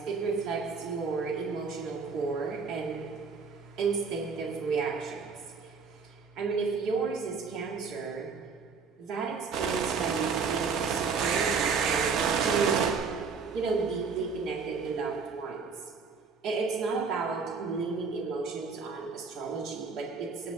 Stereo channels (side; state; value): left; quieter; 5.2 dB